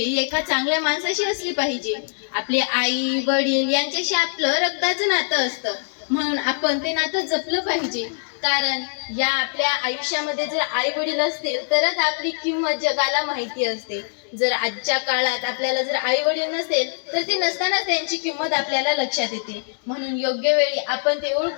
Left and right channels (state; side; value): silent; right; 64 dB below the other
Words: एका चांगल्या माणसाशी असली पाहिजे. आपले आई वडील यांच्याशी आपलं रक्ताचं नातं असतं, म्हणून आपण ते नातं जपलं पाहिजे. कारण या आपल्या आयुष्यामध्ये जर आई वडील असतील तरच आपली किंमत जगाला माहिती असते. जर आजच्या काळात आपल्याला जर आई वडील नसेल तर ते नसताना त्यांची किंमत आपल्याला लक्षात येते. म्हणून योग्य वेळी आपण ते